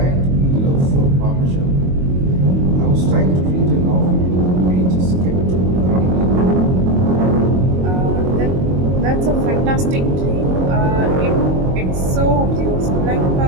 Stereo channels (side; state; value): left; late; 22 ms